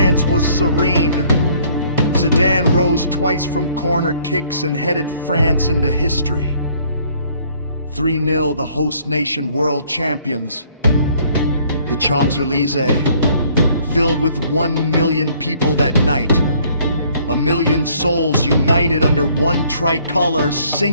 was serene. Zidane rose twice from corner kicks and headed France into history. 3-0 the host nation world champions. The Champs-Élysées, filled with 1 million people that night. 1 million souls united under one tricolor,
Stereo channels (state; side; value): inverted; both; correlation -0.61